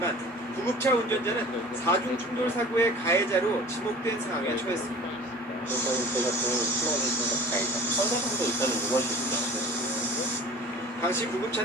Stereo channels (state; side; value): normal; both; correlation 0.42